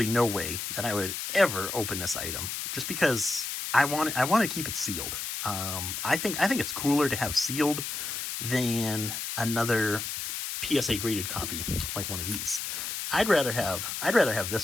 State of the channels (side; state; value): left; noise; hiss, 4 dB below the sound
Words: no way that I would ever open this item, just because I want to keep it sealed. I think it's cooler to have sealed than another PSA graded copy like one of these. I'd rather have